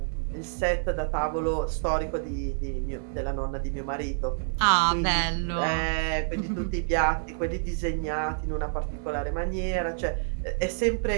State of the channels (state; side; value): silent; left; digital silence